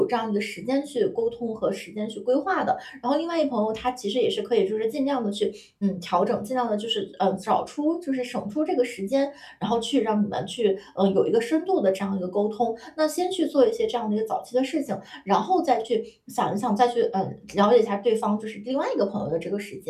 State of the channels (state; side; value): identical; both; correlation 1.00